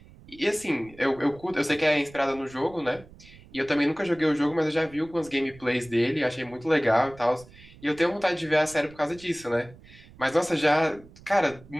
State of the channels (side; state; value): right; noise; rumble, 22 dB below the sound